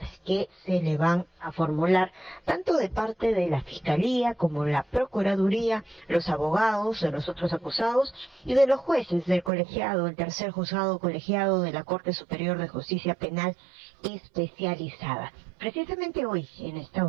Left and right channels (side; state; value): left; drops out; at 9.5 s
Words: que se le van a formular, tanto de parte de la Fiscalía como la Procuraduría, los abogados de los otros acusados y de los jueces del colegiado, el tercer juzgado colegiado de la Corte Superior de Justicia Penal Especializada. Precisamente hoy, en esta